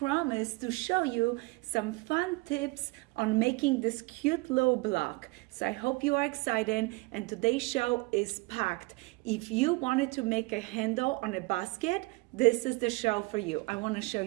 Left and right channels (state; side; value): quieter; left; 25.1 dB